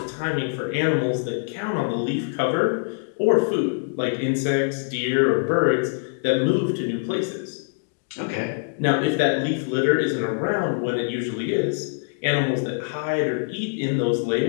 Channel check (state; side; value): silent; right; digital silence